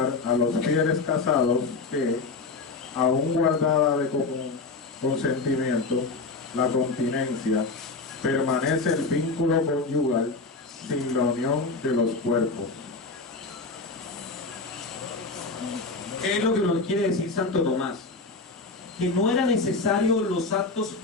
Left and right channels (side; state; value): right; quieter; 3.9 dB